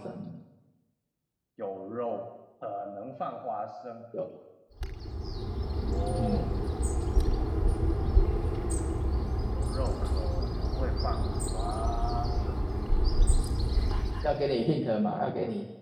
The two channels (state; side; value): identical; both; correlation 1.00